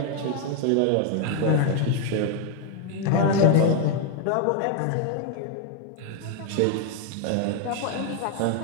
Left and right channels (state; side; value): different; both; correlation 0.01